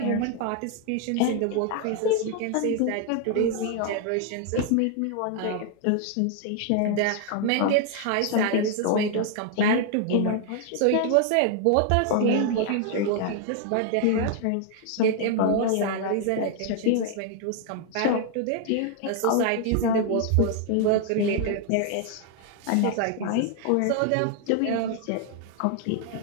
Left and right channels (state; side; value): different; both; correlation 0.00